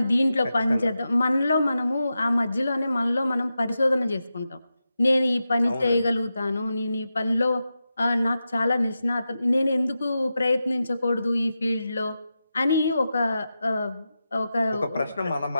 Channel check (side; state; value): both; inverted; correlation -0.91